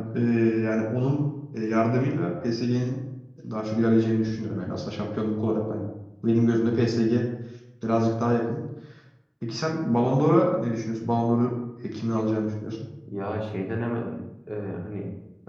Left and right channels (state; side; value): identical; both; correlation 1.00